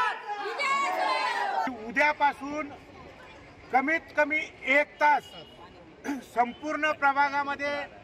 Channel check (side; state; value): both; identical; correlation 1.00